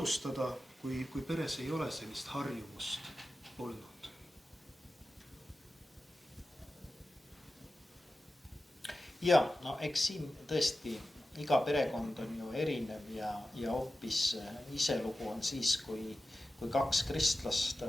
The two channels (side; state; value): both; normal; correlation 0.94